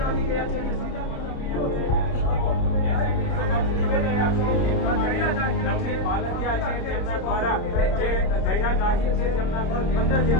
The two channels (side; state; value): right; late; 30 ms